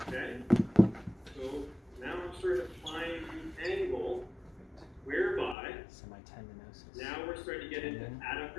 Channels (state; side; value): drops out; right; at 5.6 s